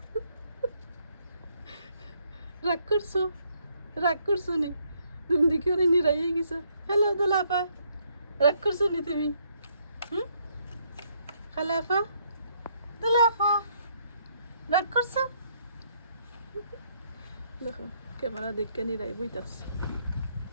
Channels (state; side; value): inverted; both; correlation -0.71